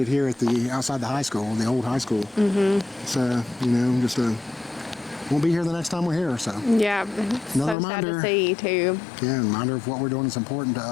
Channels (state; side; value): drops out; right; at 7.8 s